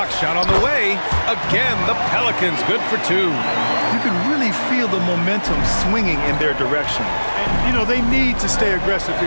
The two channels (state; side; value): inverted; both; correlation -1.00